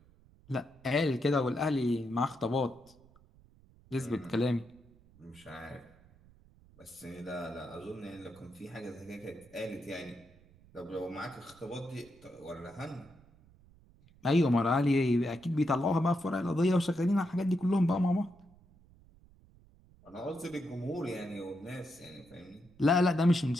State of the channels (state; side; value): noise; right; rumble, 27 dB below the sound